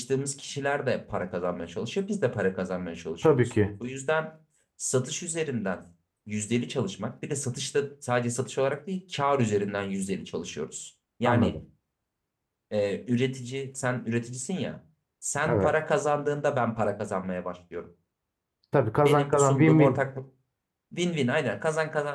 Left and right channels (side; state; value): both; identical; correlation 1.00